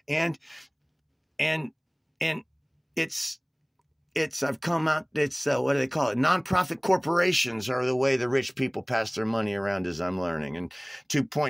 And I've come out, what do they call it? Nonprofit corporations are the way the rich people pass their money around, as I'm learning. And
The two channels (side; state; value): both; identical; correlation 1.00